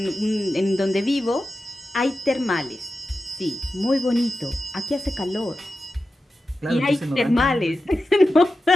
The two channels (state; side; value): normal; both; correlation 0.92